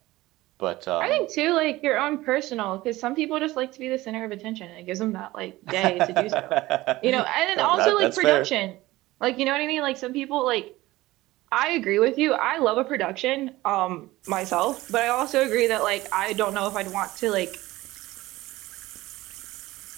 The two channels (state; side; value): quieter; left; 18.3 dB